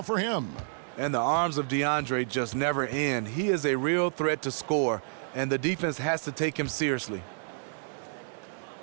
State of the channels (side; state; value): left; silent; 58 dB below the other